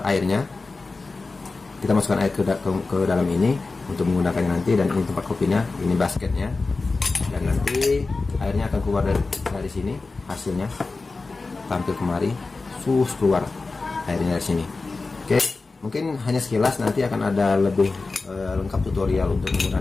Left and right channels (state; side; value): quieter; right; 3.8 dB